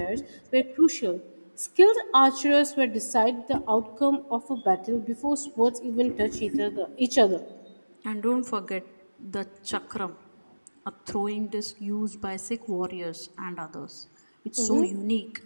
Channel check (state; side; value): inverted; both; correlation -1.00